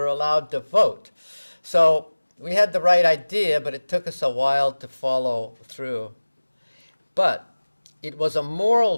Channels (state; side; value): inverted; both; correlation -1.00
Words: allowed to vote. So we had the right idea, but it took us a while to follow through. But it was a